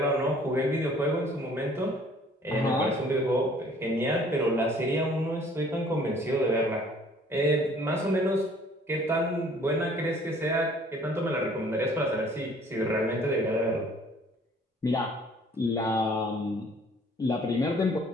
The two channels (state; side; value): normal; both; correlation 0.56